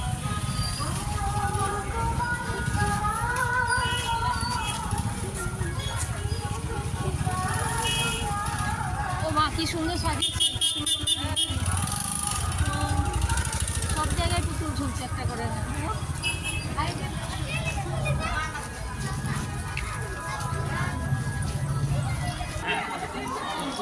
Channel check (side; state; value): both; identical; correlation 1.00